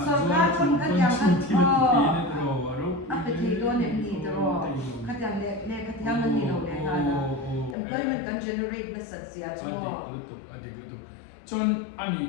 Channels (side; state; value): right; drops out; at 7.8 s